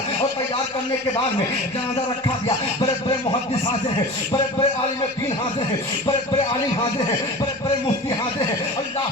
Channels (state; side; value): normal; both; correlation 0.35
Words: और तैयार करने के बाद में जनाजा रखा गया, बड़े बड़े मुहद्दिस हाजिर हैं, बड़े बड़े आलिम दीन हाजिर हैं, बड़े बड़े आलिम हाजिर हैं, बड़े बड़े मुफ्ती हाजिर हैं। अल्लाह